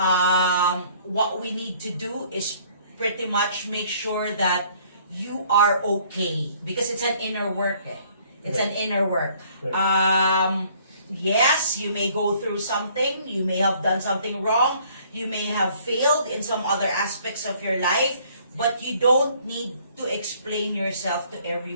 What we need to do is pretty much make sure that you are okay, because it's an inner work. It's an inner work. Yes, you may go through something. You may have done something wrong. You may have failed in some other aspects of your life. But you don't need to explain yourself to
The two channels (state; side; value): inverted; both; correlation -0.59